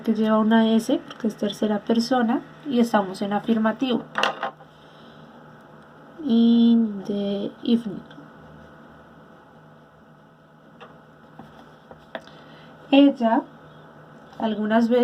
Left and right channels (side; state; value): both; identical; correlation 1.00